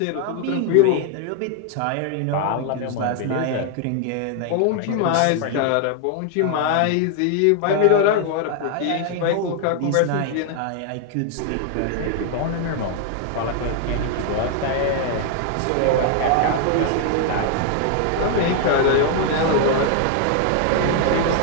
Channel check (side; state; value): both; different; correlation 0.00